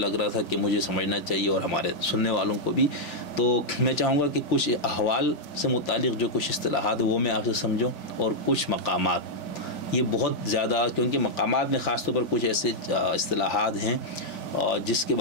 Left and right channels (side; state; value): right; late; 3.4 ms